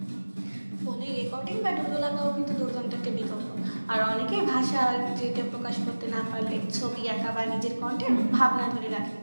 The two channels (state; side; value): inverted; both; correlation -1.00